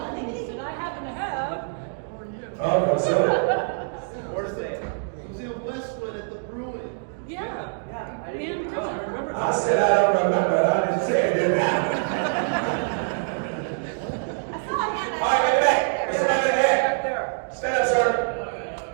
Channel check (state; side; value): silent; left; digital silence